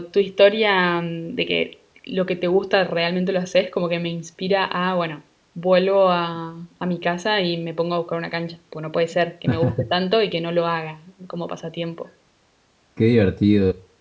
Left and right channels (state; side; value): identical; both; correlation 1.00